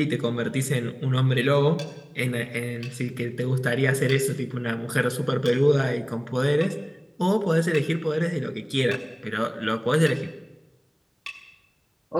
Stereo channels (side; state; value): both; identical; correlation 1.00